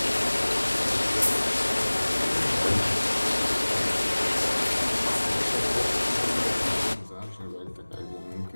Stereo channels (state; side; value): inverted; both; correlation -1.00